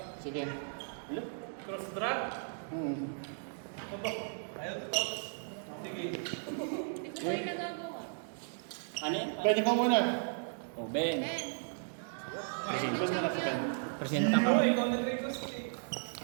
Sige. Cross track. Opo. Ayaw to. Sige. Hindi ko kayo nagagawa. Ano yan? Pwede ka muna. Oh, Ben. Present na sa Ben. Presenta ko. Ako, ikaw nag-request eh.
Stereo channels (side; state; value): left; silent; digital silence